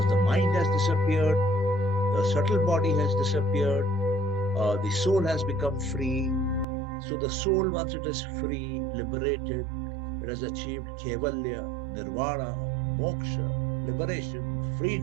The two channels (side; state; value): left; drops out; at 6.7 s